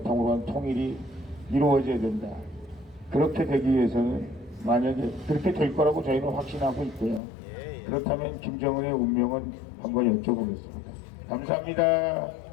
한 통일이 이루어져야 된다. 그렇게 되기 위해서는 만약에 그렇게 될 거라고 저희는 확신하고 있고요. 그렇다면 김정은의 운명은 한번 여쭤보겠습니다. 감사합니다.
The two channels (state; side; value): drops out; right; at 7.2 s